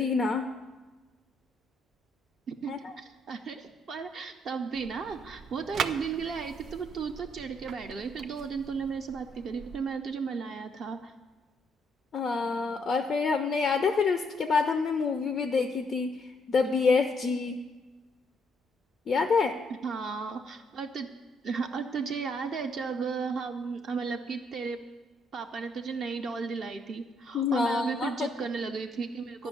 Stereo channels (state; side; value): normal; both; correlation 0.72